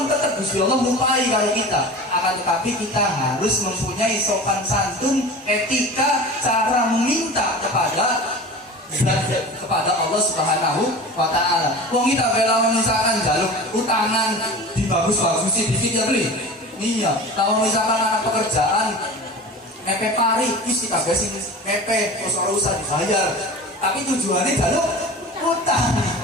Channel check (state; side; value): normal; both; correlation 0.35